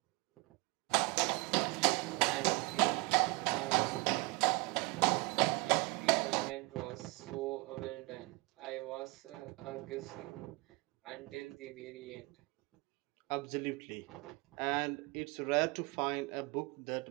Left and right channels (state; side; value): quieter; left; 25.4 dB